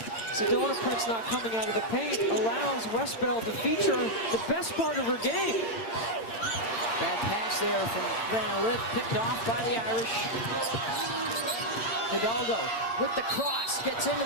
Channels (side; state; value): right; late; 8.9 ms